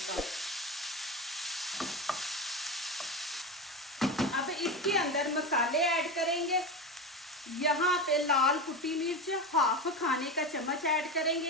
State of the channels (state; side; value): normal; both; correlation 0.20